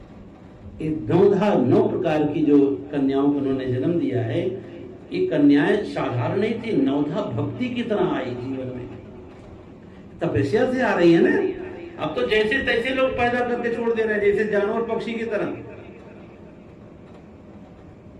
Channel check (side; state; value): both; identical; correlation 1.00